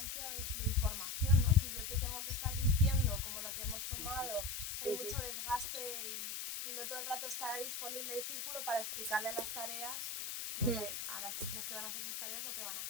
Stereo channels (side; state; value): left; noise; hiss, 4 dB below the sound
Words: de información, ¿no? Si yo te tengo que estar diciendo como lo que hemos tomado, hay mucho desgaste y no todo el rato está disponible el círculo para explicarle las tareas, lo que, a las personas que van a hacer esas tareas lo que van a